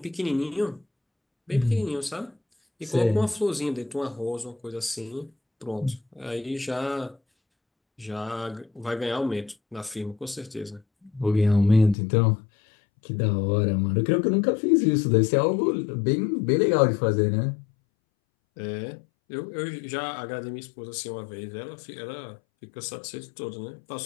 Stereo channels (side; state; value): right; drops out; at 12.0 s